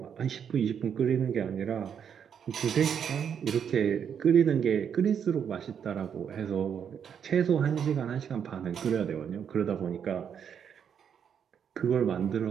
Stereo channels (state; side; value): quieter; left; 7.9 dB